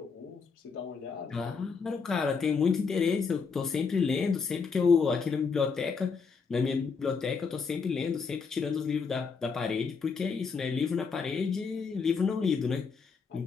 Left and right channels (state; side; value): quieter; right; 5.3 dB